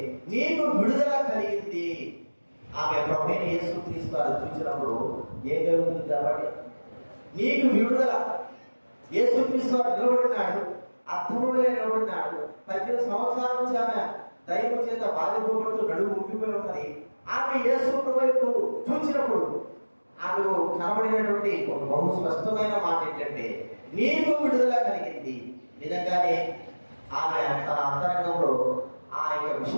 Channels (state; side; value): inverted; both; correlation -1.00